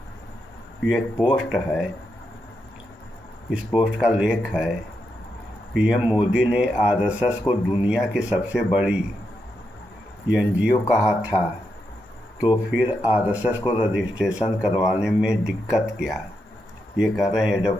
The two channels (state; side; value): normal; both; correlation 0.84